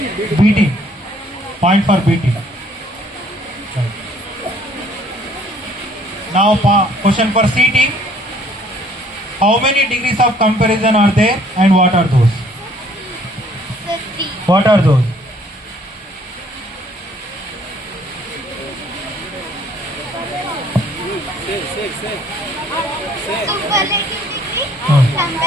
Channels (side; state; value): both; normal; correlation 0.60